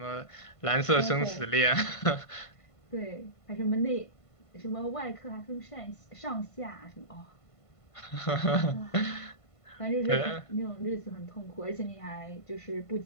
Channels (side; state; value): right; late; 1.5 ms